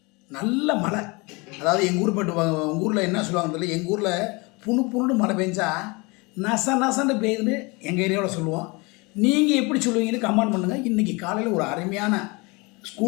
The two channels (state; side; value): quieter; right; 27.1 dB